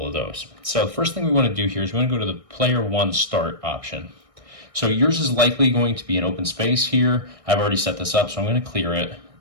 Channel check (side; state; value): left; late; 1.6 ms